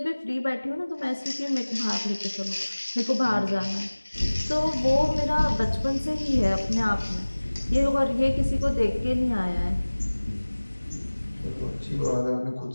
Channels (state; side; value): inverted; both; correlation -1.00